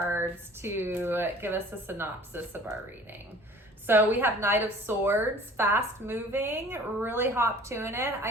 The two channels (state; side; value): normal; both; correlation 0.48